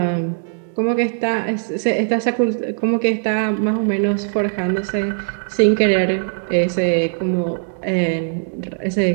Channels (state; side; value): silent; left; digital silence